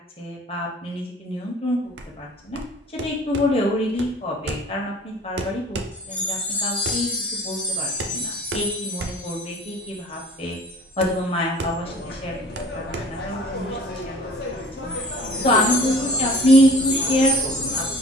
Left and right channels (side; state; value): both; normal; correlation 0.46